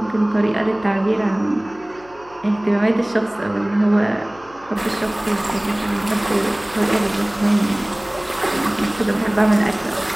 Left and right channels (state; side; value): noise; left; hum, 25 dB below the sound